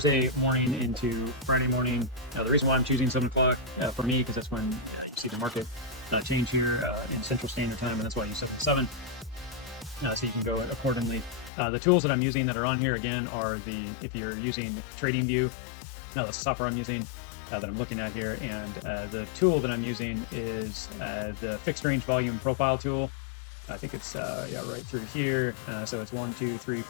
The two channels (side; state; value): right; drops out; at 11.5 s